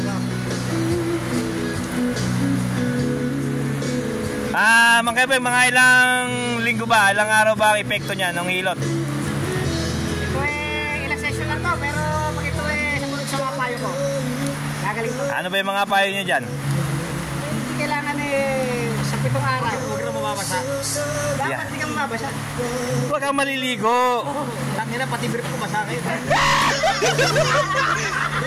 Mang Kepeng, mga ilang linggo ba, ilang araw ba ang epekto niya ng hilot? Ito eh, ilang session lang to, pero pag ito eh, sumunod sa mga payo ko, gagaling to. Ano ba yung mga payo niyo dyan? Hindi kailangan eh, sa 7 araw, huwag na mababasa. Dapat hindi ka mababasa. Huwag kang maliligo. Tangina, pati brief ko basa kayo.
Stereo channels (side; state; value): both; identical; correlation 1.00